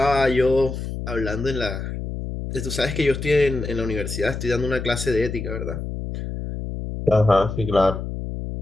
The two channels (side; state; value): left; noise; hum, 6 dB below the sound